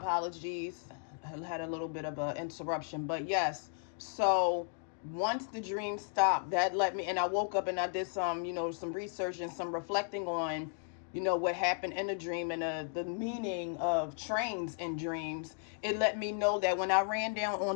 I had a little bit of an interruption, but yes. So once the dream stopped, that let me, and I woke up and I did some, some research and some reflecting on, what happened in the dream and the meaning of trains in dreams. It let me know that when I ran down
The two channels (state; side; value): silent; right; 54 dB below the other